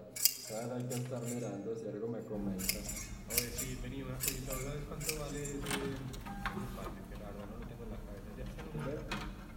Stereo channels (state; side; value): identical; both; correlation 1.00